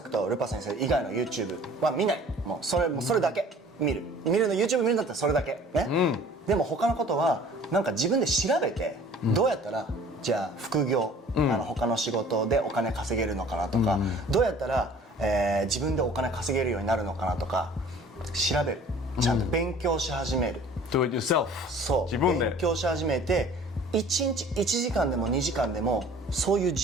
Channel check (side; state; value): both; normal; correlation 0.49